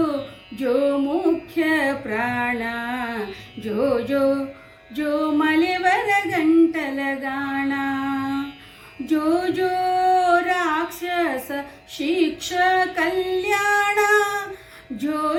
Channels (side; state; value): both; identical; correlation 1.00